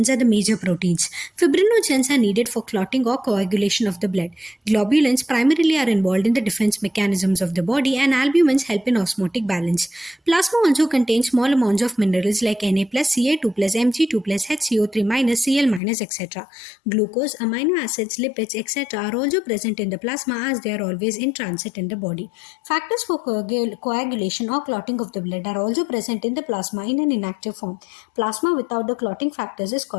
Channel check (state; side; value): drops out; right; at 15.8 s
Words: are the major proteins. Fibrinogens are needed for clotting or coagulation of the blood. Globulins primarily are involved in the defense mechanisms of the body, and albumins help in osmotic balance. Plasma also contains small amounts of minerals like Na+, Ca2+, Mg2+, HCO3-, Cl-, etc. Glucose, amino acids, lipids, etc. are also present in the plasma as they are always in transit in the body. Factors for coagulation or clotting of the blood are also present in the plasma in an inactive form. Plasma without the clotting factors is